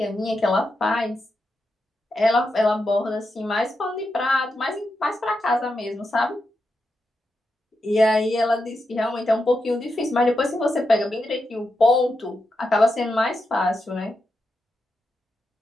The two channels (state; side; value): normal; both; correlation 0.86